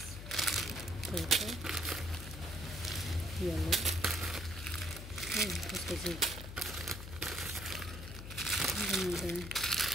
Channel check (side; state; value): left; noise; hum, 10 dB below the sound